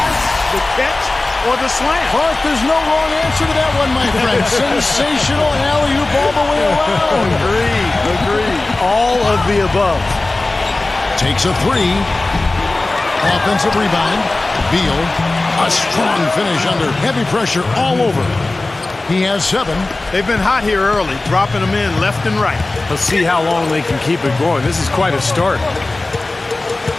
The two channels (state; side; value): quieter; right; 3.1 dB